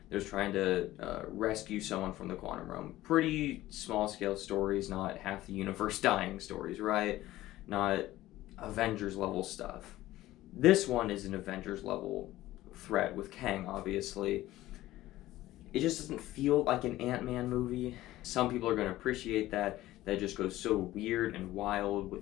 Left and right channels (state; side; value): quieter; right; 15.9 dB